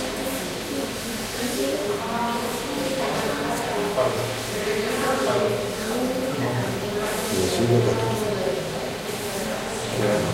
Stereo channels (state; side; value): identical; both; correlation 1.00